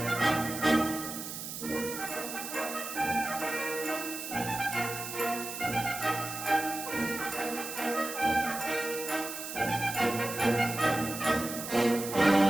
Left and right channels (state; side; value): noise; right; hiss, 7 dB below the sound